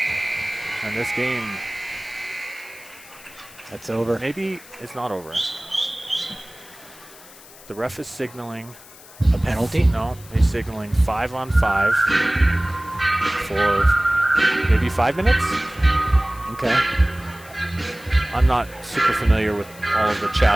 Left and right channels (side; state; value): left; noise; hiss, 21 dB below the sound